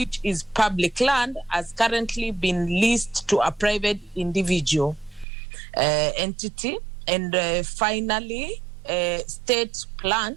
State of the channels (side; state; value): left; drops out; at 5.2 s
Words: is public land, has currently been leased to a private individual entity. And finally, state